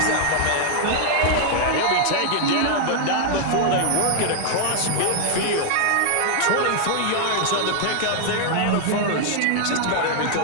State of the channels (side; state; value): both; different; correlation 0.00